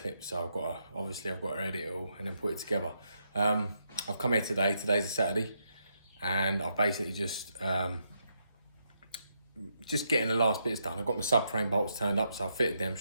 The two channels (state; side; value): inverted; both; correlation -0.79